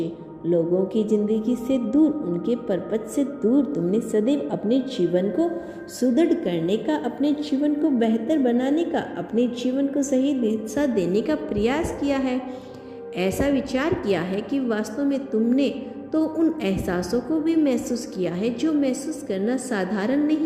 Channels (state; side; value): identical; both; correlation 1.00